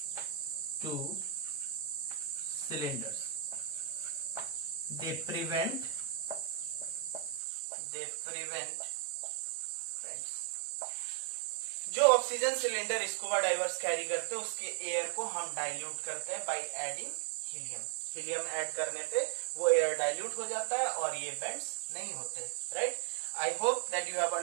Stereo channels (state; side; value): drops out; left; at 7.4 s